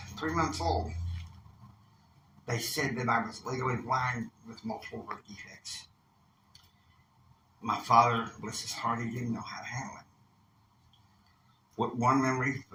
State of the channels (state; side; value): identical; both; correlation 1.00